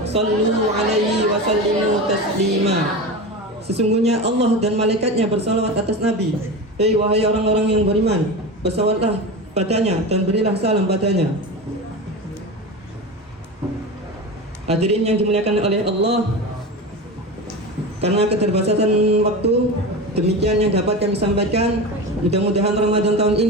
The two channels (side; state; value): both; normal; correlation 0.26